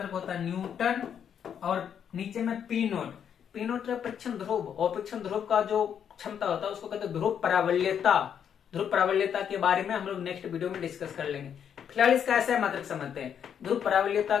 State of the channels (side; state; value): right; quieter; 8.4 dB